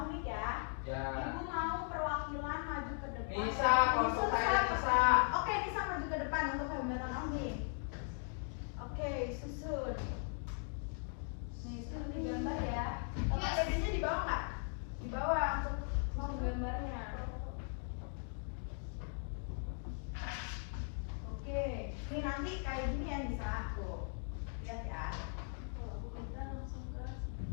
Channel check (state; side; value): silent; right; 52 dB below the other